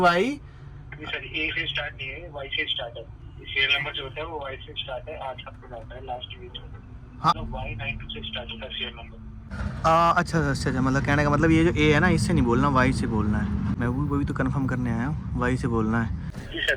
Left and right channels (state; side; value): identical; both; correlation 1.00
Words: सर A से स्टार्ट नहीं है, Y से स्टार्ट है। सीरियल नंबर जो होता है वो Y से स्टार्ट है, 8 आपको आता है लास्ट डिजिट। हाँ। Y92 से स्टार्ट होता है सीरियल नंबर। अच्छा अच्छा, मतलब कहने का मतलब ये जो A है ना, इससे नहीं बोलना, Y से बोलना है। मैं वही तो कंफर्म करने आया हूँ, Y से बोलना है। जी